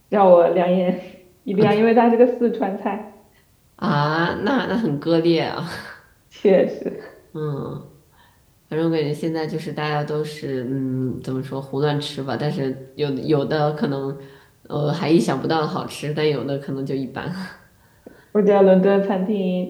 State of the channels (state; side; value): identical; both; correlation 1.00